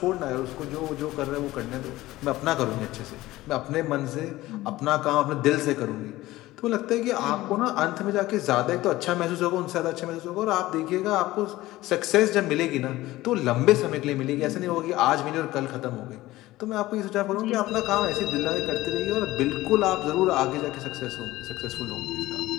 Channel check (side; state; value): right; quieter; 17.3 dB